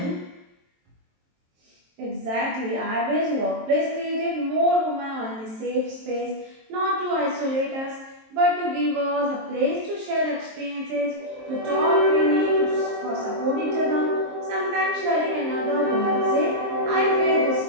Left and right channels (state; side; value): late; left; 23 ms